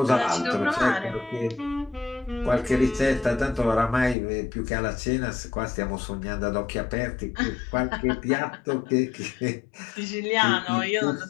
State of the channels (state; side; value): drops out; right; at 4.2 s